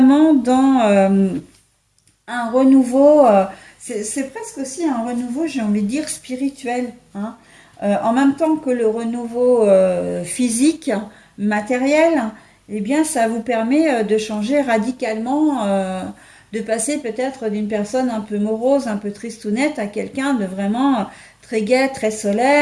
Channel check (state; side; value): identical; both; correlation 1.00